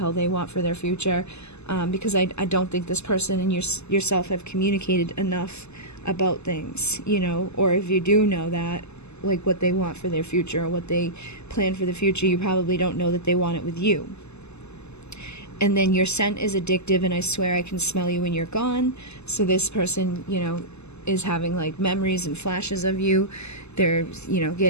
they want for their future, because I don't think this person and yourself have communicated enough about things, or if you do know that, like what they want for their future or what they plan for the future, you probably don't know that they want it with you. And then your scent is addictive, and I swear I can smell you when you're gone. So this person, is having like memories and flashes of you. They're,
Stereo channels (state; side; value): late; right; 0.80 ms